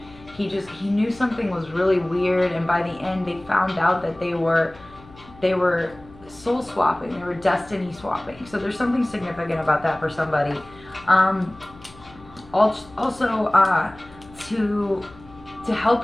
he knew something was really weird, and by the end they found out that they were soul swapping, they were destiny swapping. So there's something significant about that for somebody. Also, to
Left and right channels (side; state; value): left; noise; hum, 23 dB below the sound